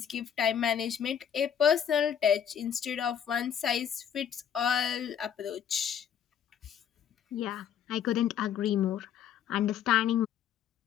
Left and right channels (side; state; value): right; quieter; 8.7 dB